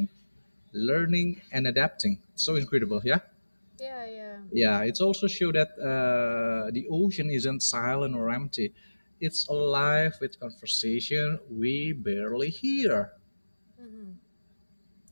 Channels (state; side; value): inverted; both; correlation -1.00